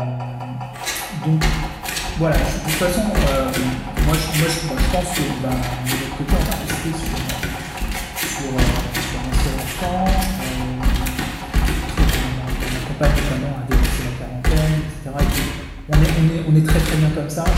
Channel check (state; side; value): identical; both; correlation 1.00